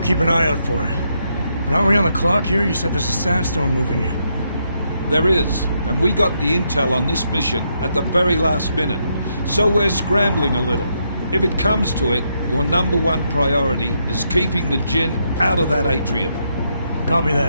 keep an eye out for it. But aren't we on the clock here? You said there's a sandstorm moving in. There is, and we got the intel on this mission at the very last minute, so we're scrambling a little. If it comes to it, your number one priority is keeping the Jinn out of that atrium. Copy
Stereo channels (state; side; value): inverted; both; correlation -0.78